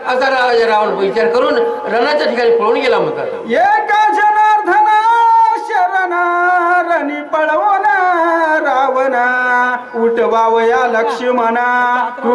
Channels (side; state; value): both; identical; correlation 1.00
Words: राजा रावण विचार करून रणाच्या ठिकाणी पळून गेला म्हणतात. एका जनार्दन शरण रणी पळवून रावण उठवावया लक्ष्मणा